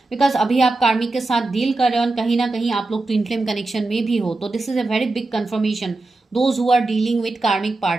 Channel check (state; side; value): quieter; left; 3.2 dB